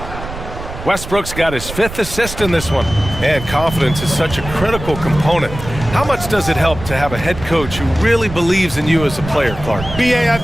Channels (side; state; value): right; noise; rumble, 10 dB below the sound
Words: Westbrook's got his 5th assist in this one. And confidence is such a critical component. How much does it help to have a head coach who really believes in you as a player, Clark? BA, I